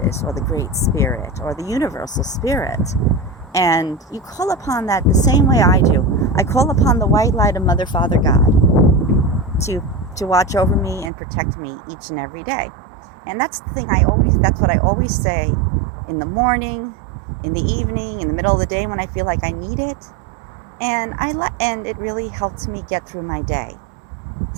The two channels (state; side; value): drops out; left; at 11.1 s